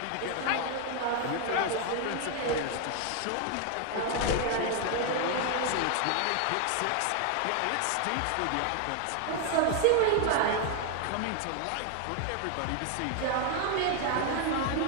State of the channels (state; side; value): different; both; correlation 0.00